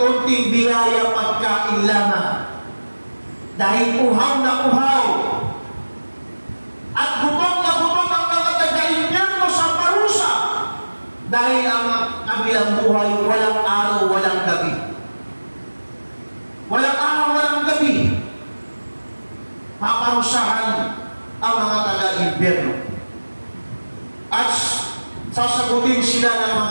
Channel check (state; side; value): inverted; both; correlation -1.00